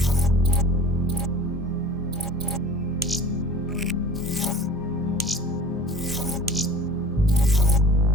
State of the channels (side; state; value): both; normal; correlation 0.42